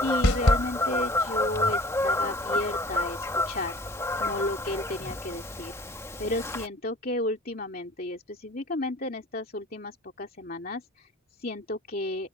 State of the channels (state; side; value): normal; both; correlation 0.48